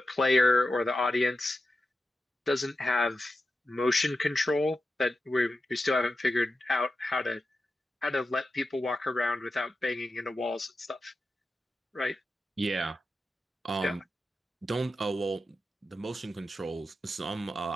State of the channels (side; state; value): both; normal; correlation 0.91